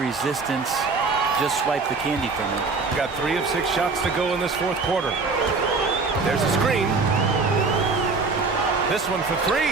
just swipe the candy from him. Got 3 of 6 shots to go in this 4th quarter. There's a screen. This one for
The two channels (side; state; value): left; quieter; 4.2 dB